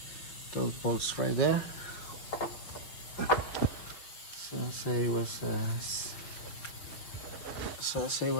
those bolts right there. So say it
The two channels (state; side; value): late; right; 6.0 ms